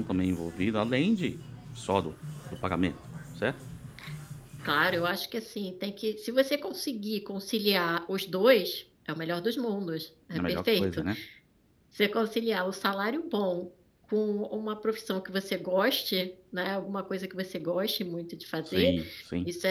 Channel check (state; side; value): identical; both; correlation 1.00